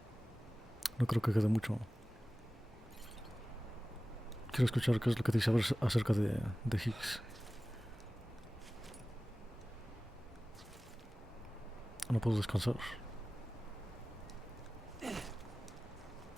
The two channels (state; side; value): normal; both; correlation 0.97